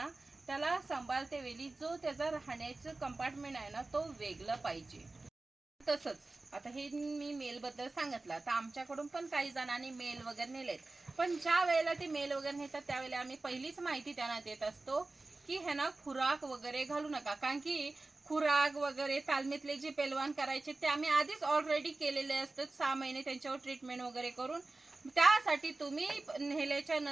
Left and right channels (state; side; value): quieter; left; 3.2 dB